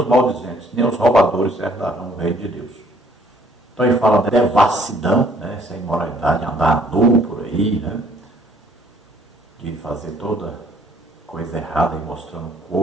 maldizentes, nem os roubadores herdarão o reino de Deus. Então ele fala da devassidão, né, essa imoralidade, andar nu por aí, né, de fazer toda coisa errada e mostrando o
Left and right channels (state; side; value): normal; both; correlation 0.61